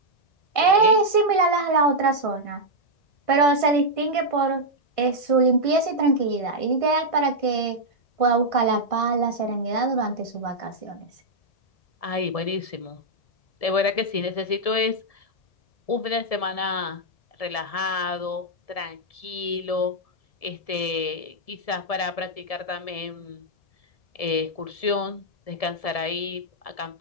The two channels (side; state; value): right; late; 1.7 ms